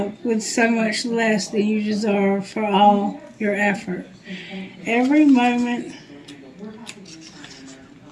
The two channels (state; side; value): identical; both; correlation 1.00